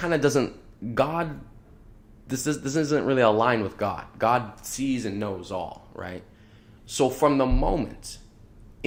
of doesn't, this isn't really aligned with God. God sees and knows all, right? So from the moment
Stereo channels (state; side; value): identical; both; correlation 1.00